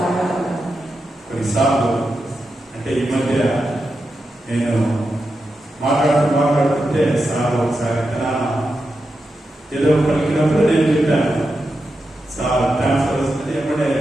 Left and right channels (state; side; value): normal; both; correlation 0.88